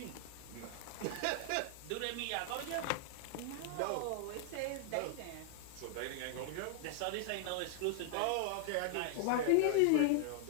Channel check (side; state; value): both; different; correlation 0.00